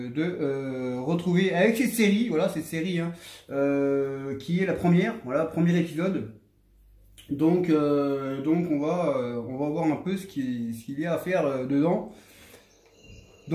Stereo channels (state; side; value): identical; both; correlation 1.00